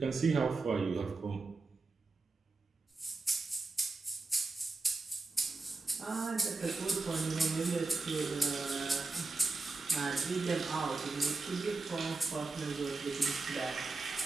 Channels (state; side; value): quieter; left; 3.6 dB